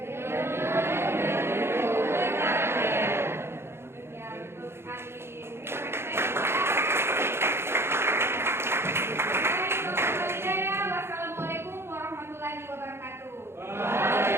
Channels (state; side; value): late; left; 0.12 ms